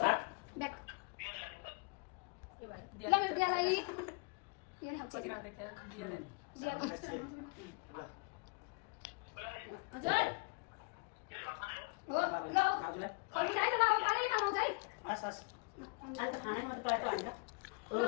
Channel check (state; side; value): quieter; right; 32.8 dB